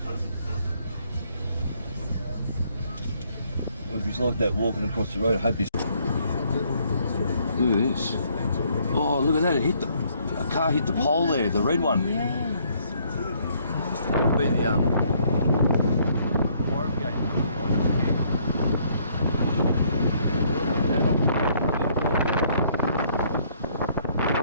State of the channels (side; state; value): both; inverted; correlation -0.67